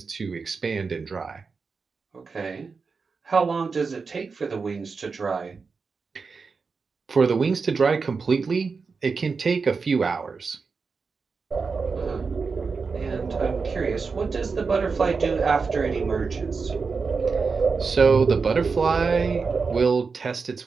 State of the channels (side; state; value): left; quieter; 4.9 dB